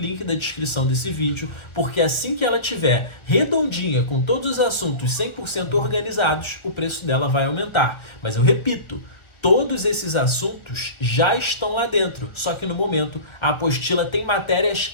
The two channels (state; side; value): late; right; 1.4 ms